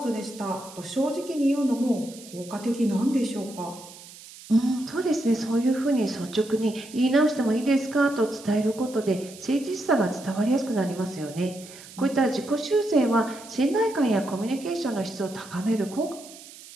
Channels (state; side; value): noise; right; hiss, 18 dB below the sound